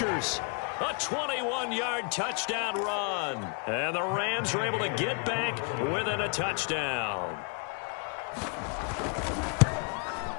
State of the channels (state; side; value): quieter; right; 36.8 dB